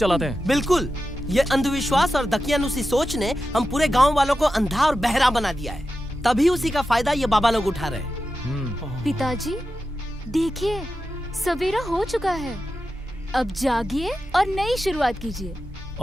हैं। बिल्कुल, ये अंधविश्वास और दकियानुसी सोच ने हम पूरे गांव वालों को अंधा और बहरा बना दिया है। तभी उसी का फायदा ये बाबा लोग उठा रहे हैं। पिताजी, देखिए सवेरा हो चुका है। अब जागिए और नई शुरुआत कीजिए।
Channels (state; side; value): normal; both; correlation 0.91